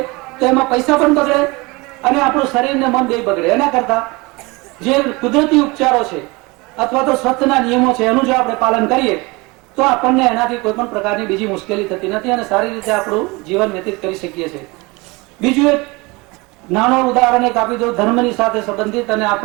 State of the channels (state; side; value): quieter; left; 25.0 dB